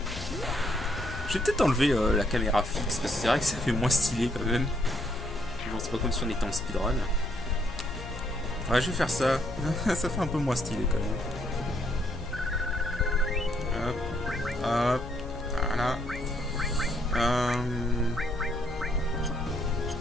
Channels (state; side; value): noise; left; hum, 11 dB below the sound